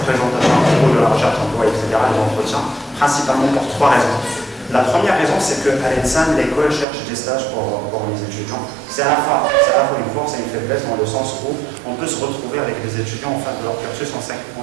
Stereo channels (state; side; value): drops out; left; at 6.9 s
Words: présentation à propos de la recherche d'emploi, etc. et de l'entretien, principalement pour 3 raisons. La première raison, c'est qu'à l'ENSAM, l'école cherche des stages pour les étudiants. C'est à la fois une force et une faiblesse dans le sens où on peut se retrouver avec des étudiants en fin de leur cursus en 5e